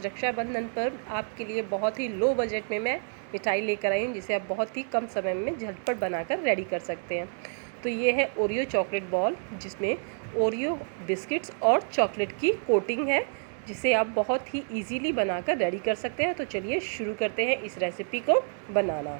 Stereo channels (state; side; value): silent; left; 59 dB below the other